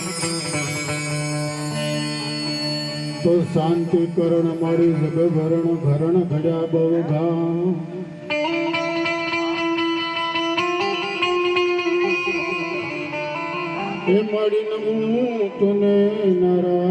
તો શાંતિ કરણ મારી જગભરણ ઘરણ ઘડ્યા બહુ ઘા એ મારી નમું તને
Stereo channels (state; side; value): identical; both; correlation 1.00